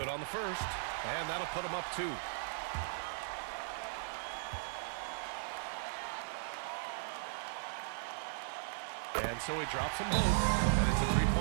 on the first, and that'll put him up 2. And so he drops them both, and it's a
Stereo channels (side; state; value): left; silent; digital silence